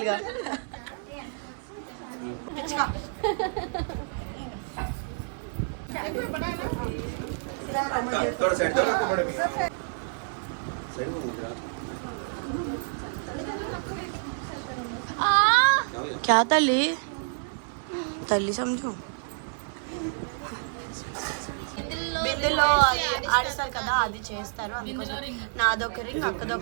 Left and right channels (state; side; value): silent; left; digital silence